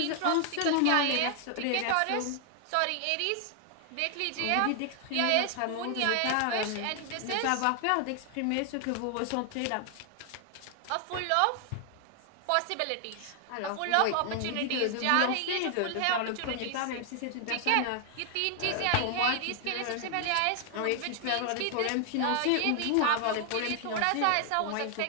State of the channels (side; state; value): both; different; correlation 0.00